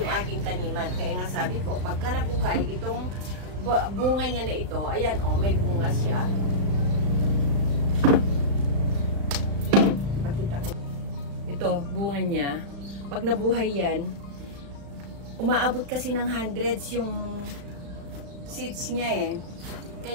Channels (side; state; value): left; late; 35 ms